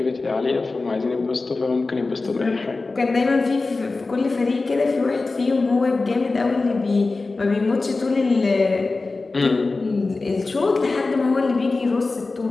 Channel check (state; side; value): quieter; right; 3.6 dB